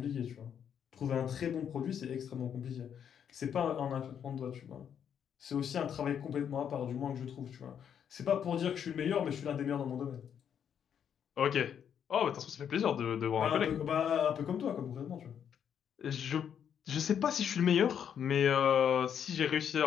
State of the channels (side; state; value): right; quieter; 8.4 dB